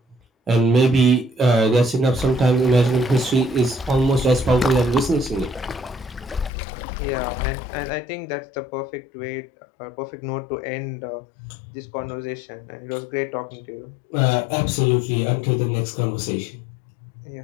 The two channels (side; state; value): right; drops out; at 6.5 s